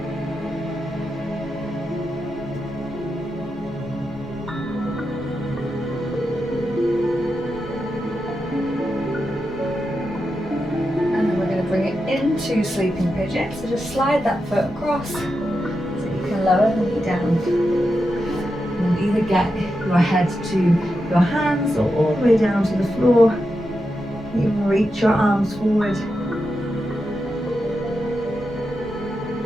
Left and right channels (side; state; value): both; normal; correlation 0.88